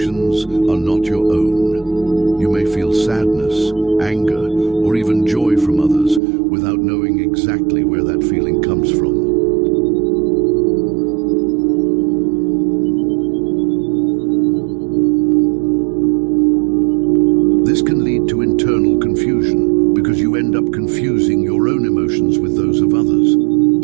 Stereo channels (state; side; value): drops out; left; at 6.2 s